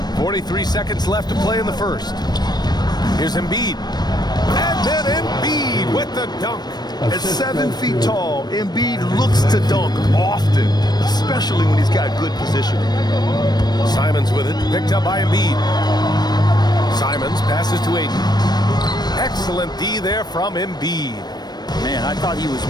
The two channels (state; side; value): late; right; 0.20 ms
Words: 43 seconds left to play in the first. Here's Embiid. And then Embiid with the dunk. At 7 feet tall, Embiid looks to dunk often, especially when he's got good positioning. Simons with it, picked up by Embiid. Simons passes to Ayton. Excellent D there from Embiid. Man, I thought he was